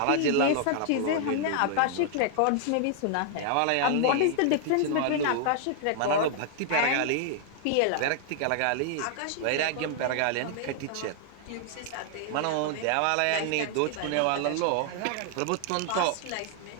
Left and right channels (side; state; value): both; different; correlation 0.00